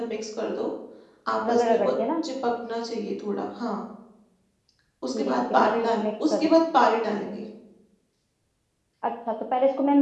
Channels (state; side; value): identical; both; correlation 1.00